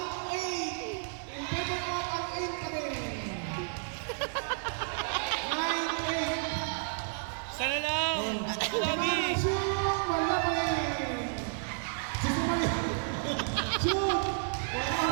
Sana lang! Lagi!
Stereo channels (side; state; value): left; silent; 57 dB below the other